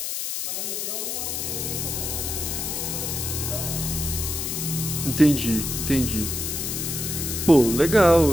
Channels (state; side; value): noise; left; hiss, 3 dB below the sound